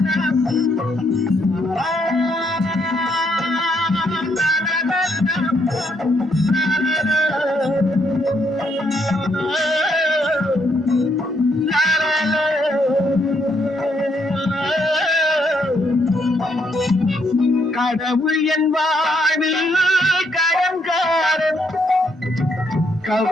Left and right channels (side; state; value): both; normal; correlation 0.73